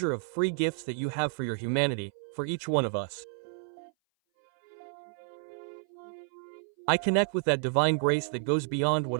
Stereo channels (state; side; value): silent; left; 57 dB below the other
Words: of free gifts that you have for your humanity, for each one of us. I connect with that divine grace that goes beyond what